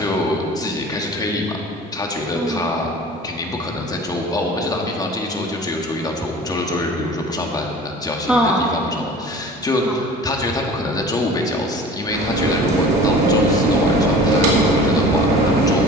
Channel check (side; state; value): both; normal; correlation 0.42